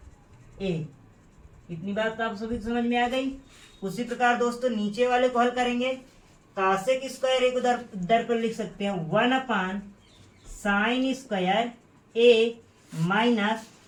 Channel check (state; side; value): identical; both; correlation 1.00